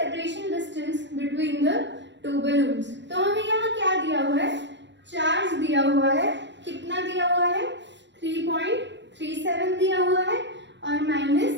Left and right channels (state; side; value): late; left; 0.52 ms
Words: distance between the two balloons। तो हमें यहाँ क्या दिया हुआ है, चार्ज दिया हुआ है, कितना दिया हुआ है, 3.37 दिया हुआ है और